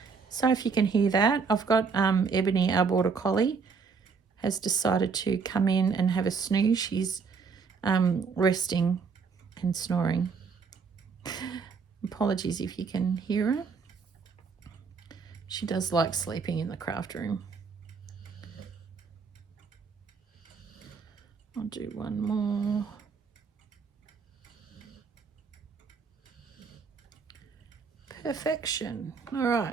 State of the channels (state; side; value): quieter; left; 5.3 dB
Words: So if you can hear that, I've got Ebony, our border collie, has decided to come in and have a snooze. She's resting and snoring. Apologies if you can hear her. She does like sleeping in the craft room. I'll do one more. Perfection. All